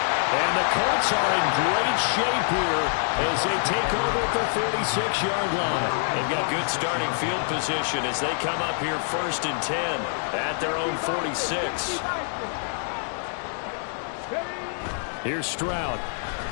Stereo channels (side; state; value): right; silent; digital silence